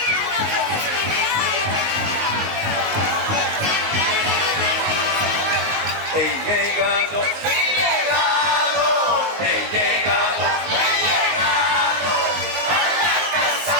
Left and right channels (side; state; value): left; late; 19 ms